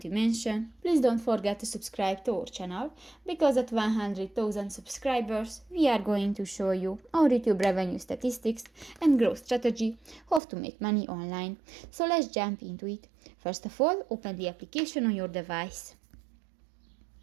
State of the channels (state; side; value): drops out; left; at 10.4 s